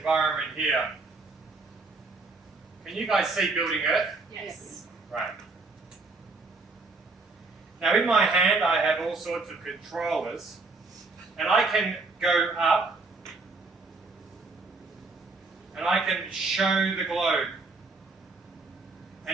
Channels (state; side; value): quieter; left; 3.7 dB